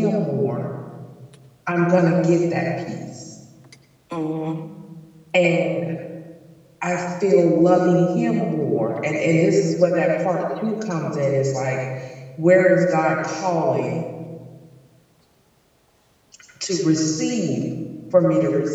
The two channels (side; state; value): both; identical; correlation 1.00